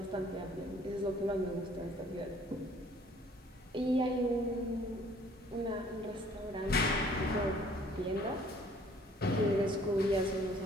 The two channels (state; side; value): normal; both; correlation 0.57